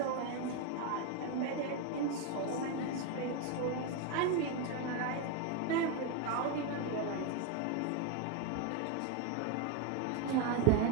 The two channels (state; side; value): different; both; correlation 0.02